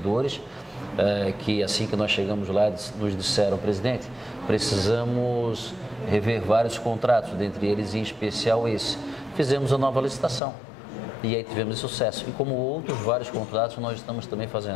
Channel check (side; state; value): right; drops out; at 10.4 s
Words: que assim que nós chegamos lá, nos disseram, presidente, precisamos rever vários contratos, dentre eles em especial esse. Fizemos a nova licitação e aí tivemos sucesso. E como outros vários contratos nós estamos também